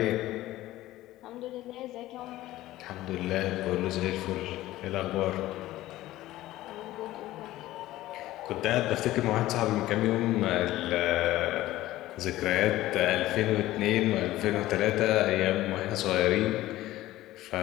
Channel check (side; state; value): right; quieter; 15.9 dB